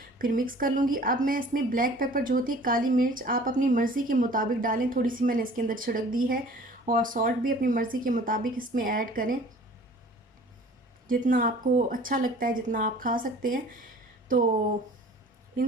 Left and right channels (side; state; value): both; normal; correlation 0.48